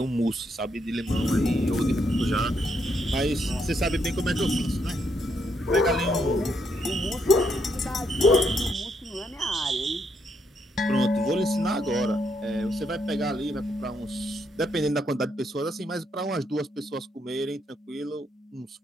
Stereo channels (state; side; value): normal; both; correlation 0.76